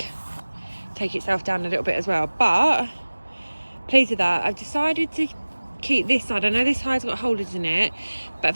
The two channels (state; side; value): inverted; both; correlation -1.00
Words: take itself down a little bit as well. But pleased with that. I've decided to keep this side. I know this side's got holders in it, but